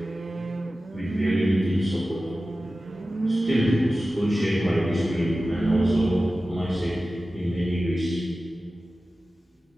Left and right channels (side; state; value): both; normal; correlation 0.95